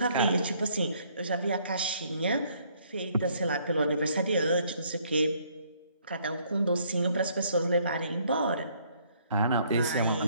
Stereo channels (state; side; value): inverted; both; correlation -0.66